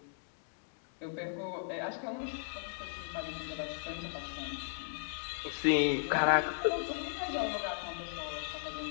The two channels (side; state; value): right; silent; digital silence